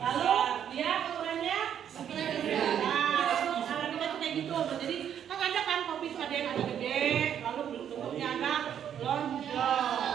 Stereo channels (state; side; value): quieter; left; 9.2 dB